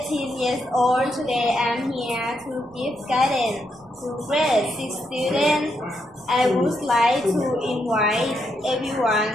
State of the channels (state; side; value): noise; right; rumble, 30 dB below the sound